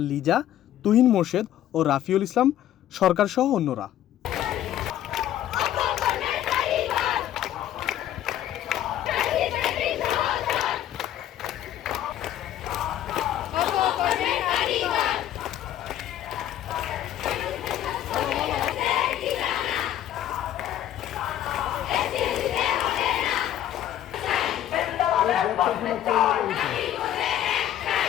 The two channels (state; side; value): quieter; right; 11.9 dB